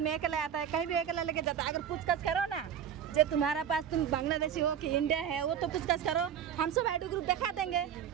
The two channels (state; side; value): quieter; left; 9.0 dB